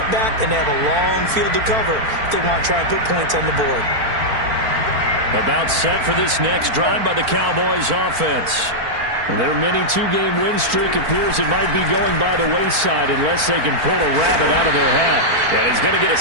and they have a long field to cover if they want to try and put points on the board. About set for this next drive by the Cowboys offense. Their mini 2-game win streak appears it might be going by the wayside unless they can pull a rabbit out of their hat. And he's going to get a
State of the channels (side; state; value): left; late; 4.4 ms